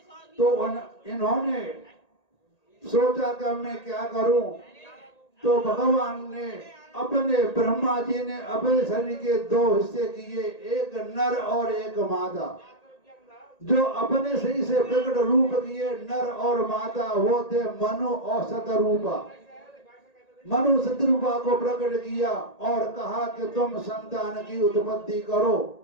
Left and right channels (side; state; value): right; late; 1.8 ms